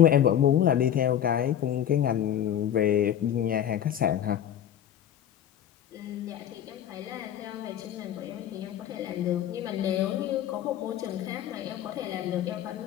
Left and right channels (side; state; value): right; quieter; 10.3 dB